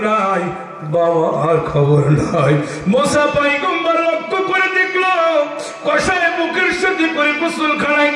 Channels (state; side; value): identical; both; correlation 1.00